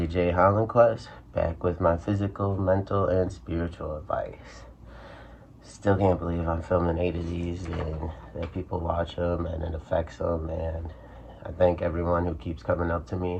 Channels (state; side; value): identical; both; correlation 1.00